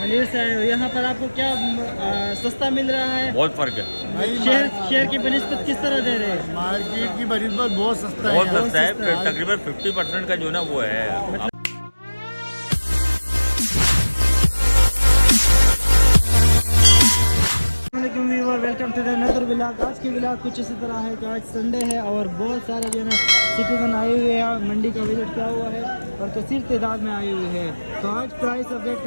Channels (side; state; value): both; inverted; correlation -1.00